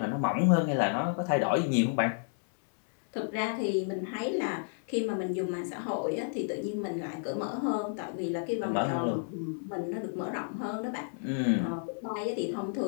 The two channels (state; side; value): silent; right; 57 dB below the other